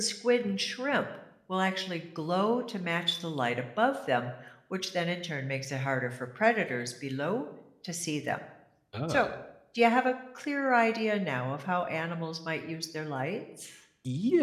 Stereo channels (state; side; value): identical; both; correlation 1.00